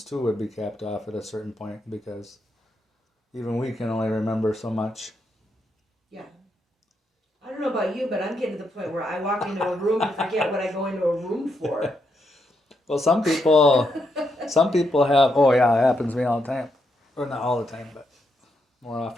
too would be capped off at a certain point because even we can only remember so much. Yeah. I don't know about you, but I'm getting to the point where I walk into a room and forget what I go into a room for. Well, some people have. Oh yeah, it happens to me all the time. Or not all the time, but more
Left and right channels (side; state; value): both; normal; correlation 0.80